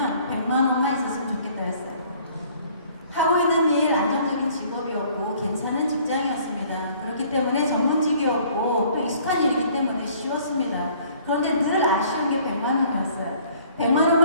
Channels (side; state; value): both; inverted; correlation -0.57